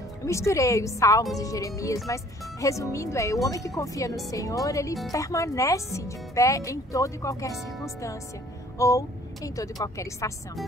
Eu misturei os Salmos e Jeremias, mas resumindo o homem que confia no Senhor, ele permanece de pé em toda e qualquer circunstância, ou em toda e qualquer estação.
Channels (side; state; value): both; normal; correlation 0.55